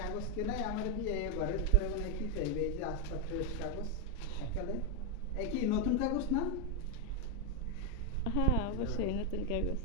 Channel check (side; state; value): both; normal; correlation 0.02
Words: নতুন কাগজ না? হ্যাঁ অবশ্যই নতুন কাগজ।